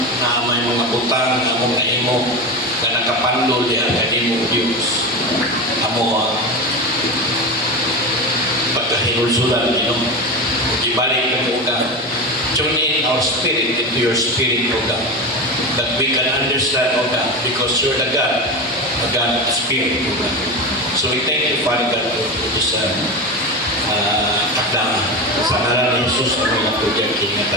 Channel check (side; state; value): both; normal; correlation 0.22